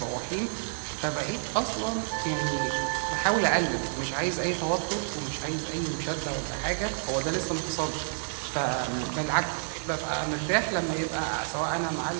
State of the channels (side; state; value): left; silent; 58 dB below the other